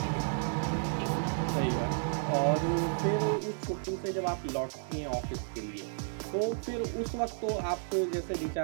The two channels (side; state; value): left; silent; digital silence